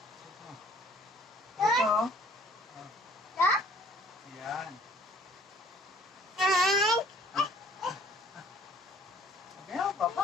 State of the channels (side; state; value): both; normal; correlation 0.56